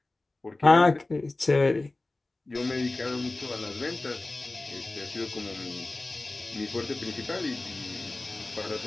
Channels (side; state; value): right; quieter; 3.0 dB